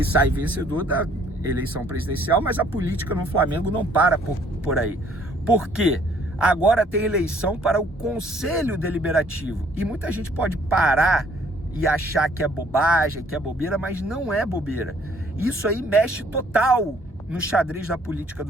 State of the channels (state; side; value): normal; both; correlation 0.61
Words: sai vencedor da eleição presidencial, mas a política no Flamengo não para por aí. Por quê? Agora tem eleição para o Conselho Deliberativo. E muita gente pode parar e achar que é bobagem, que é bobeira, mas não é bobeira. Isso aí mexe total no xadrez da política